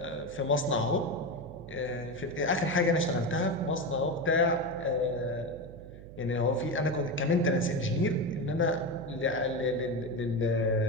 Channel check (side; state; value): right; noise; hum, 16 dB below the sound